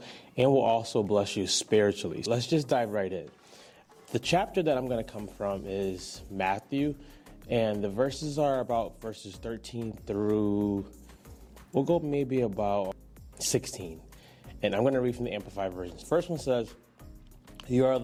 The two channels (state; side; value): identical; both; correlation 1.00